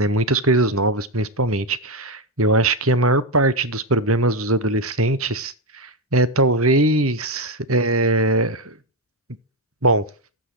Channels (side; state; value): both; normal; correlation 0.07